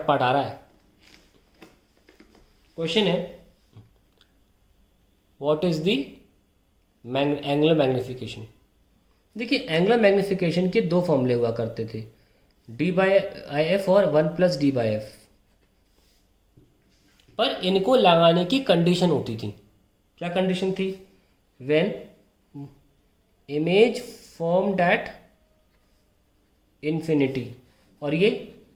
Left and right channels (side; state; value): both; identical; correlation 1.00